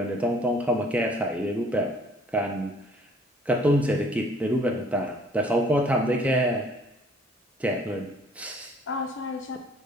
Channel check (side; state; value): both; normal; correlation 0.57